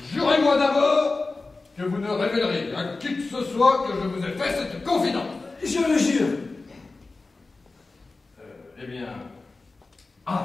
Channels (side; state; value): right; quieter; 3.6 dB